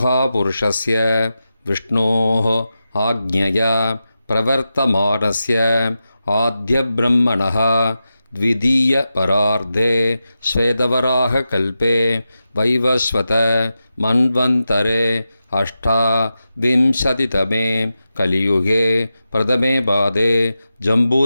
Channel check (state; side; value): inverted; both; correlation -0.91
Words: விஷ்ணோः ஆக்ஞயா பிரவர்த்தமானஸ்ய ஆத்யப்ரம்மணः த்விதீய பரார்த்தே ஸ்வேதவராக கல்பே வைவஸ்வத மன்வந்தரே அஷ்டாவிம்சதிதமே கலியுகே பிரதமே பாதே